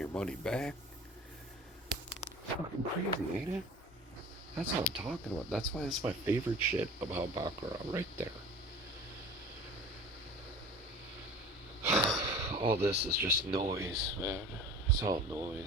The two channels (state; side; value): normal; both; correlation 0.40